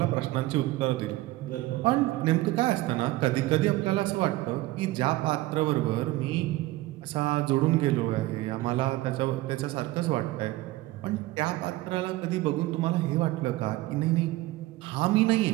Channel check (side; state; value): left; quieter; 18.0 dB